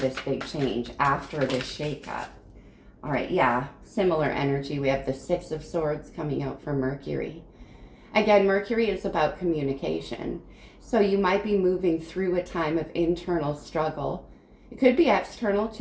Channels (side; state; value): both; identical; correlation 1.00